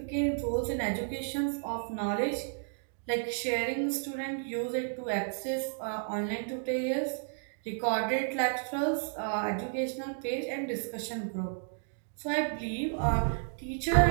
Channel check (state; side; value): silent; left; digital silence